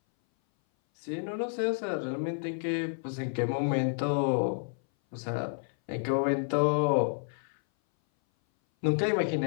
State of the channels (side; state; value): right; silent; 58 dB below the other